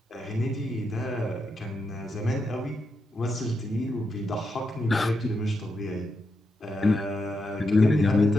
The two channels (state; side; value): normal; both; correlation 0.84